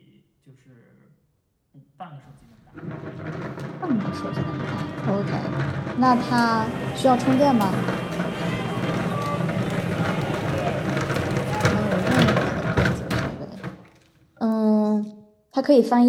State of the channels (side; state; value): both; identical; correlation 1.00